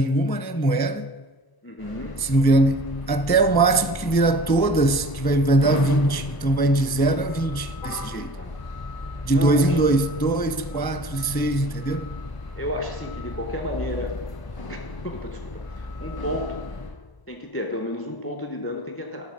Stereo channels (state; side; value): late; right; 1.0 ms